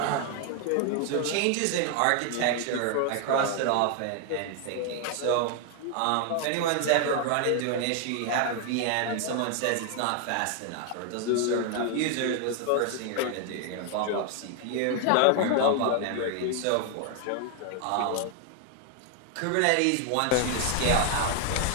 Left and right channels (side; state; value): both; different; correlation 0.00